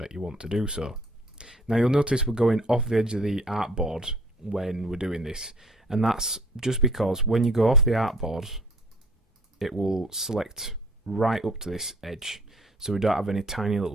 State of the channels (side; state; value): both; normal; correlation 0.54